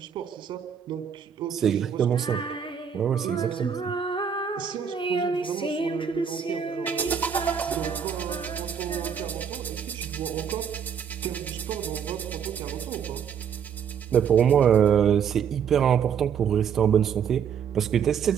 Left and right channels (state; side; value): quieter; left; 7.6 dB